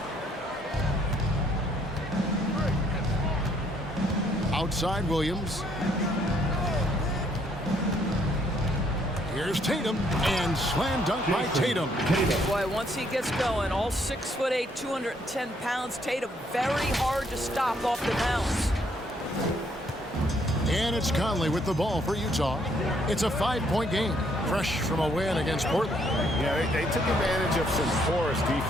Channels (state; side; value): normal; both; correlation 0.69